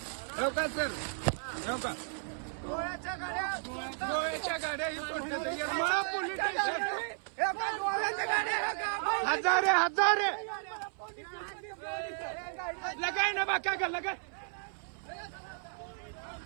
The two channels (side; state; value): left; silent; 55 dB below the other